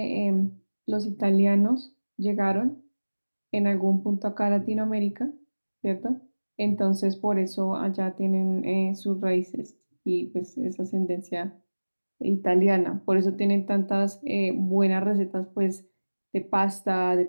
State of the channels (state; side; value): inverted; both; correlation -1.00